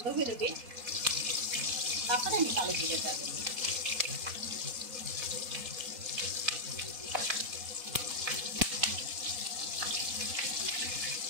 বেরোবে, তারপরে আমি কালো জিরেটা দেবো।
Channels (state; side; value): late; left; 4.1 ms